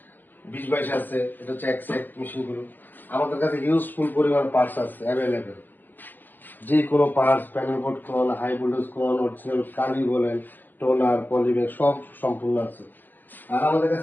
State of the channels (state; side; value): late; right; 0.088 ms